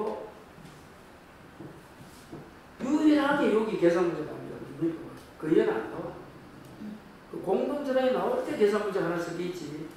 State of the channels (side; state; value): both; identical; correlation 1.00